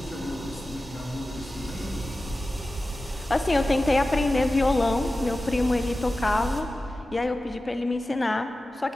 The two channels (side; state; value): both; normal; correlation 0.95